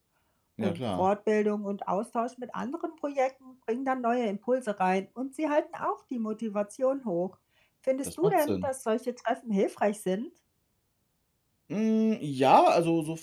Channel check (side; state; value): both; identical; correlation 1.00